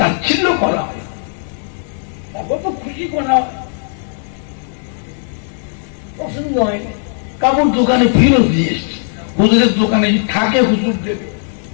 করা হয়, তারপর তো খুশি করা হয়, পছন্দ হয়নি। কাপড় দোকানে ফেরত দিয়ে এসছে, হুজুরের দোকানে থাকে হুজুর দেবে,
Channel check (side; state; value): right; silent; digital silence